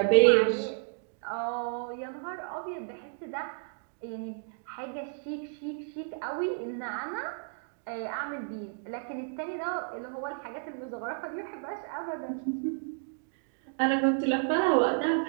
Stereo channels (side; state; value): left; silent; digital silence